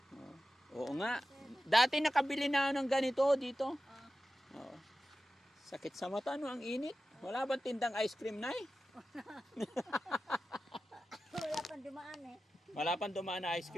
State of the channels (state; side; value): normal; both; correlation 0.93